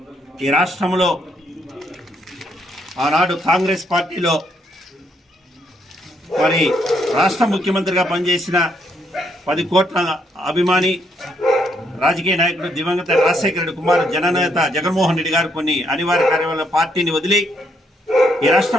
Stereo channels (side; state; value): both; normal; correlation 0.73